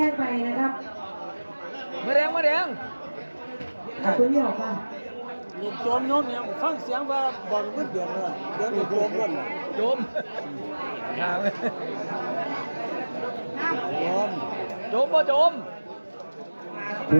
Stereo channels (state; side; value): inverted; both; correlation -1.00